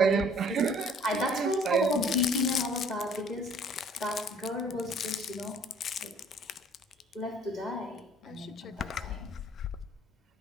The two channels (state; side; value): normal; both; correlation 0.56